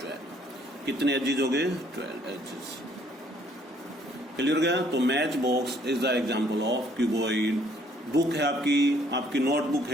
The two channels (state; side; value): normal; both; correlation 0.63